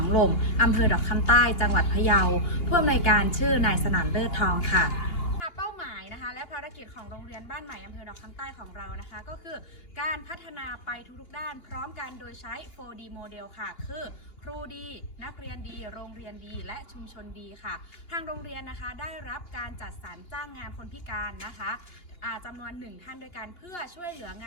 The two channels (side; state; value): right; late; 2.8 ms